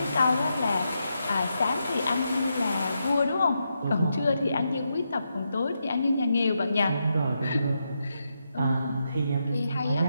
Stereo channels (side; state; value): both; inverted; correlation -0.84